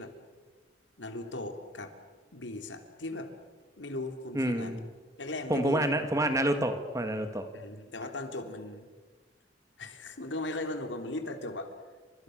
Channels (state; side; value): normal; both; correlation 0.50